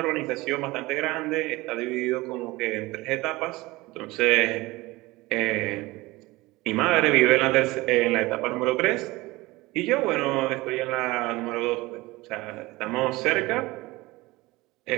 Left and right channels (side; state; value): left; quieter; 20.9 dB